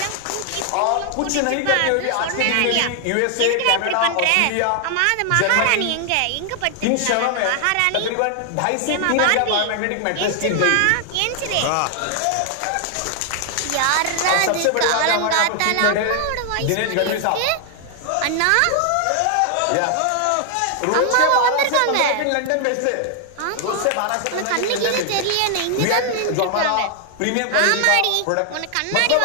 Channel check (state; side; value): different; both; correlation 0.00